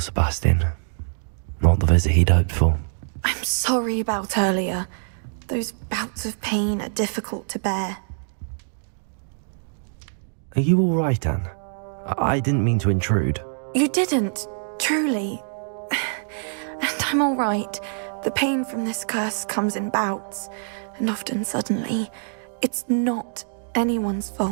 Not the visit he'd hoped for. I'm sorry about earlier. Those bouts of pain are difficult to bear. Are you all right, Anne? I didn't mean to intrude. You didn't, truly. And I'm all right. The pain from this curse comes in bouts, and often suddenly. It's not anyone's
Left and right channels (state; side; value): silent; left; digital silence